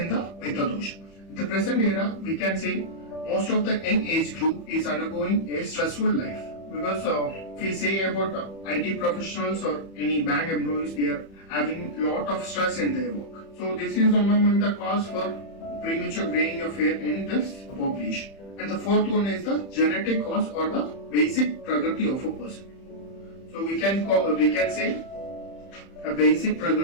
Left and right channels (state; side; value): late; right; 31 ms